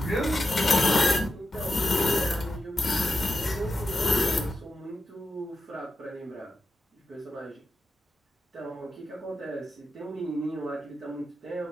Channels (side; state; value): both; normal; correlation 0.89